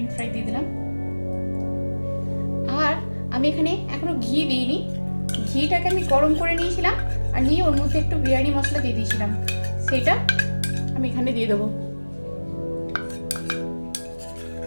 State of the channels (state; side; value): inverted; both; correlation -1.00